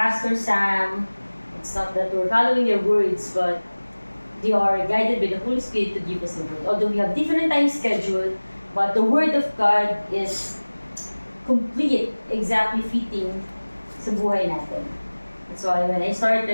Sam, it's not that we're following their words, but they are guided by the Holy Spirit to give us the word. Although we have different time schedule, but the word of God is complete, exactly fitting sa buhay natin. That's why when I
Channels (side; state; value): both; inverted; correlation -1.00